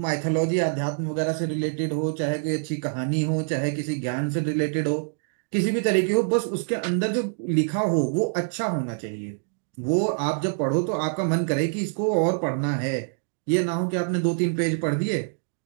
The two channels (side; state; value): left; silent; digital silence